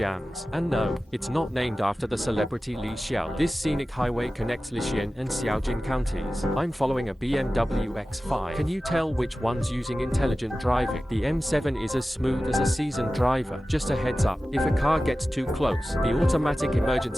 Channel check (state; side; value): normal; both; correlation 0.95